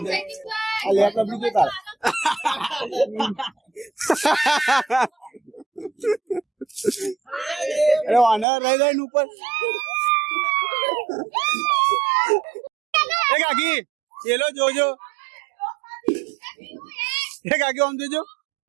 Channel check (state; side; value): drops out; left; at 8.5 s